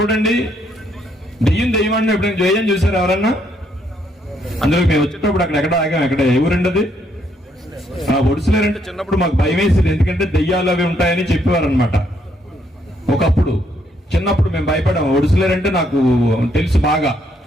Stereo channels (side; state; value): both; normal; correlation 0.72